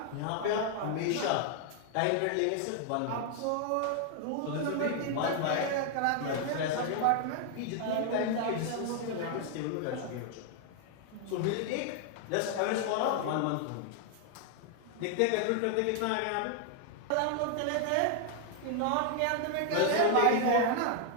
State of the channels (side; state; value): both; different; correlation 0.00